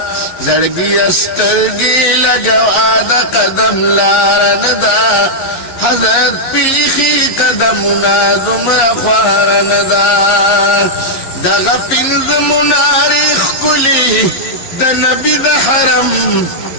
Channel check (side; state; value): right; late; 11 ms